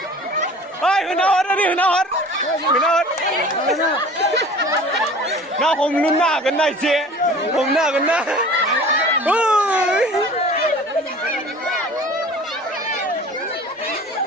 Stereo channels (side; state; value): both; normal; correlation 0.43